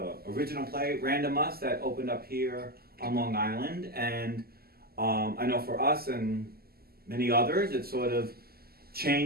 play Random Reprise that opened up here on Long Island, and I know for us and many others it sort of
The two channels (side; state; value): left; late; 0.45 ms